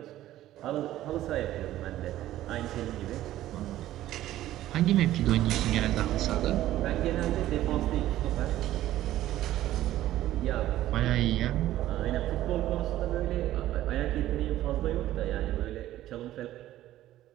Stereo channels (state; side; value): quieter; left; 14.0 dB